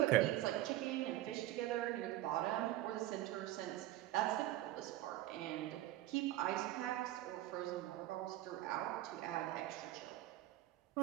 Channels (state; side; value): quieter; left; 15.1 dB